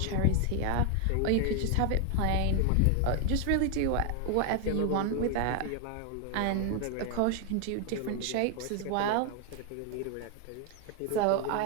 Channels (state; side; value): different; both; correlation 0.01